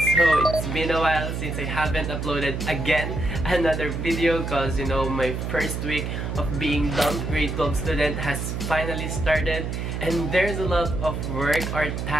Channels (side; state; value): right; noise; hum, 3 dB below the sound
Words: it's been a while since I haven't uploaded again another video cause my first week of being dumped grade 12 student has finally started and there's a lot of work or